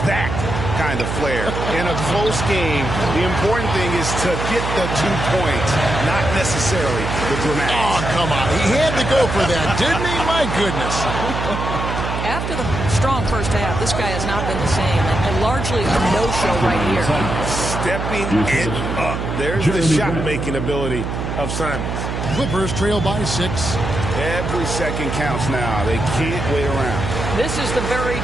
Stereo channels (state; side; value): noise; right; hum, 3 dB below the sound